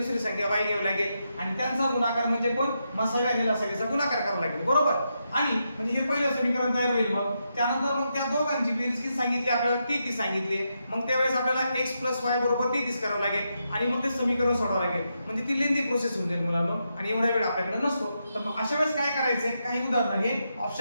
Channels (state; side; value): inverted; both; correlation -0.84